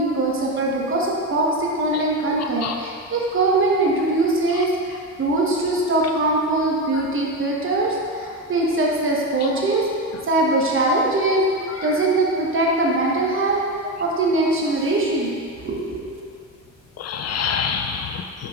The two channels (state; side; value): normal; both; correlation 0.15